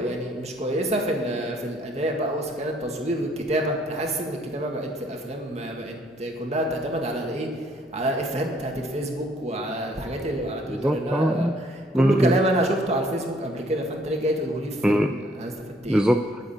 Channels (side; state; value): both; normal; correlation 0.64